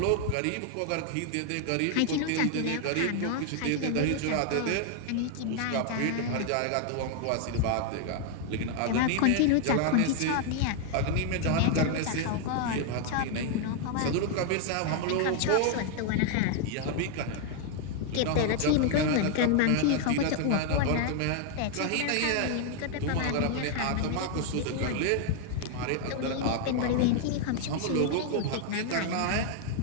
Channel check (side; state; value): both; different; correlation 0.00